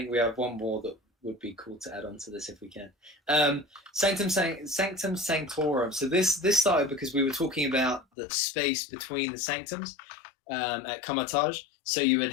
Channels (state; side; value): drops out; right; at 8.1 s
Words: we have one more that would be cool to add on to this if we can. Sanctum Sanctorum. So this started because we were talking about the space between the sanctums at Kamatage. So you would